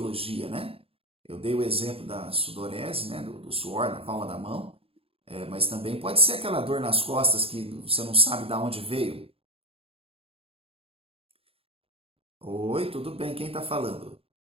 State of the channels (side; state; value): left; late; 0.27 ms